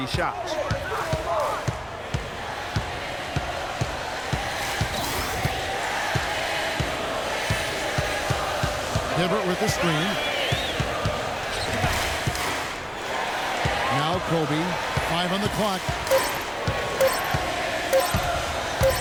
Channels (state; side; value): identical; both; correlation 1.00